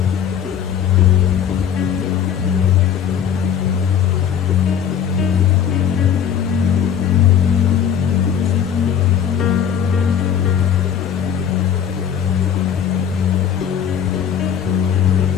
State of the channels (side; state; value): right; quieter; 8.5 dB